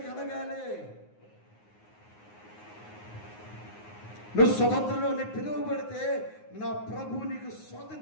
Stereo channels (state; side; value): late; right; 9.6 ms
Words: కలగాలి. నువ్వు స్వతంత్రంలో పిలువబడితే నా ప్రభు నీకు